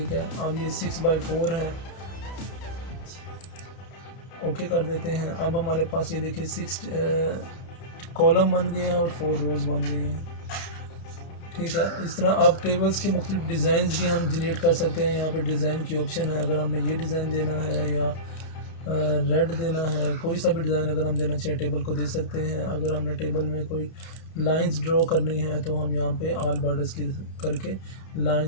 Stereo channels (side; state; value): right; late; 31 ms